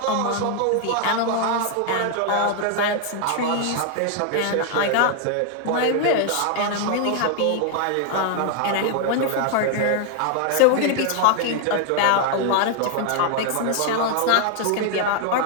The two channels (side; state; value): both; different; correlation 0.00